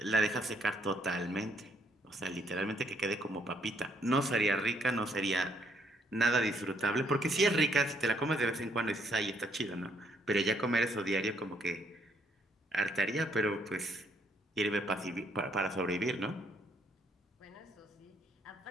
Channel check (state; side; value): normal; both; correlation 0.70